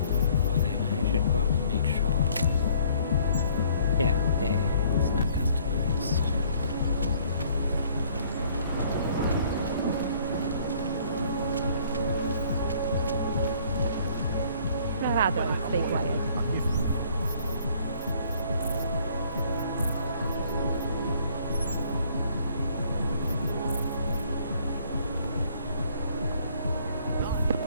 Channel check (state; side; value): inverted; both; correlation -0.60